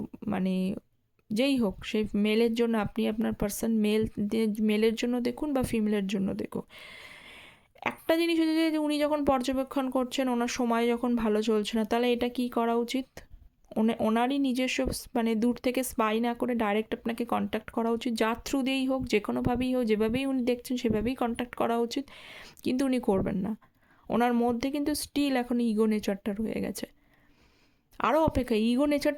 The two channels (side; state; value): both; identical; correlation 1.00